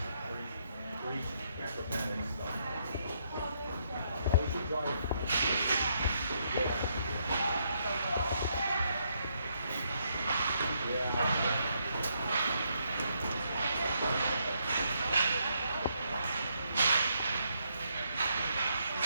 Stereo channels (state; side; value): inverted; both; correlation -0.75